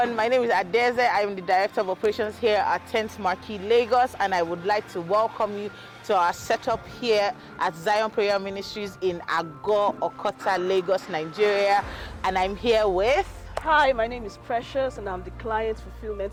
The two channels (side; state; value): both; identical; correlation 1.00